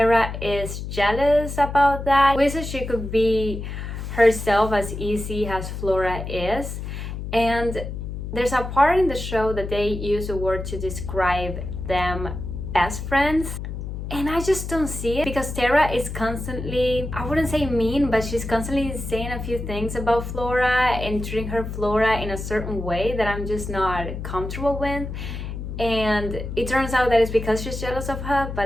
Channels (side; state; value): left; noise; hum, 7 dB below the sound